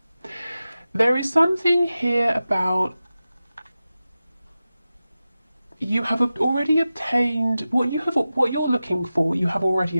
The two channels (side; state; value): both; inverted; correlation -0.94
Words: There is something here about you have already obtained what you're looking for. You have already